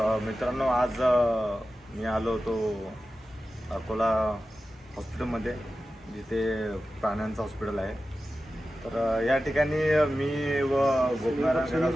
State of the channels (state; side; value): normal; both; correlation 0.93